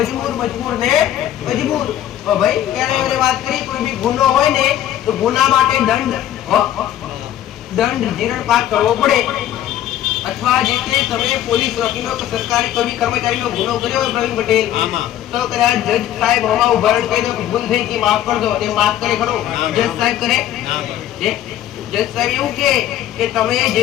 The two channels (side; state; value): right; quieter; 12.0 dB